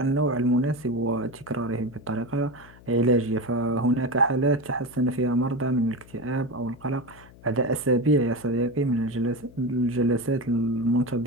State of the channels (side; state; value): left; noise; hum, 22 dB below the sound